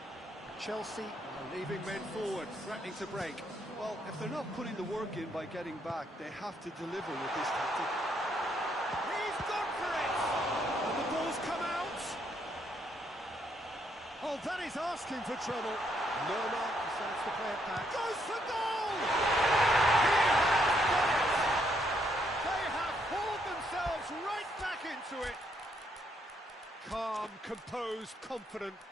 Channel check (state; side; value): normal; both; correlation 0.73